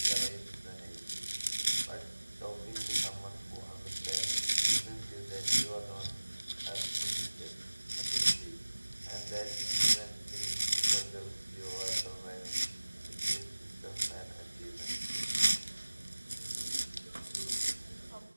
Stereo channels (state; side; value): inverted; both; correlation -1.00